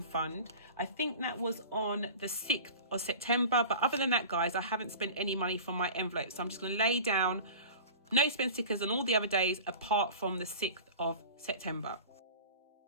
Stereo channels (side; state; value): both; inverted; correlation -0.36